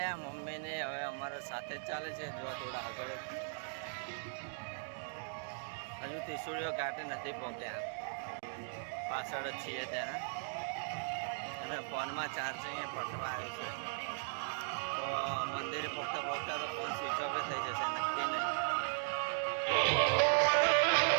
મમ્મીને હવે અમારા સાથે જ ચાલે છે. જો થોડા આગળ હજુ ત્રિશુળીઓ ઘાટે નથી પહોંચ્યા, પાછળ જ છીએ ત્યાં. અને ફોનમાં ચાર્જિંગ પટવા આવ્યું છે, તો મંદિરે પહોંચતા પહોંચતા તો ફોન સ્વિચ ઓફ થઈ જશે, નક્કી નહીં.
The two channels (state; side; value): silent; left; digital silence